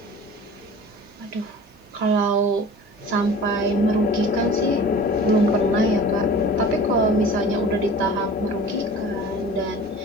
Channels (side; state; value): both; normal; correlation 0.41